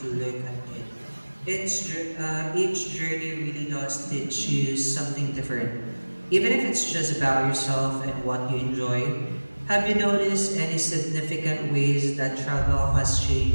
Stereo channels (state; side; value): inverted; both; correlation -1.00